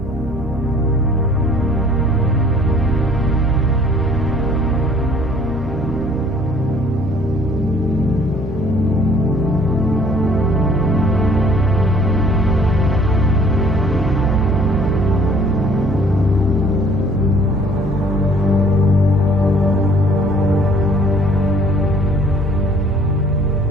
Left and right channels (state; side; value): normal; both; correlation 0.56